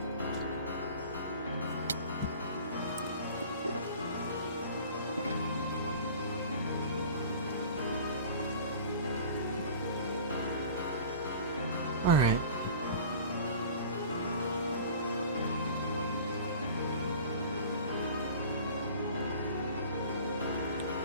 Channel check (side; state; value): both; inverted; correlation -0.41